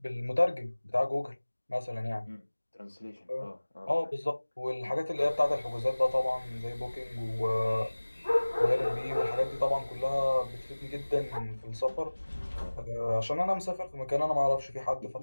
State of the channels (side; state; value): both; inverted; correlation -1.00